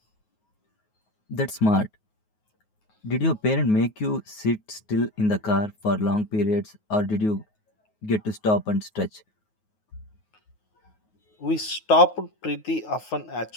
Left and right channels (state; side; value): late; right; 9.4 ms